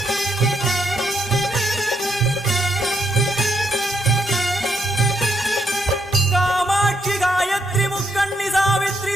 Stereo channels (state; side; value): normal; both; correlation 0.76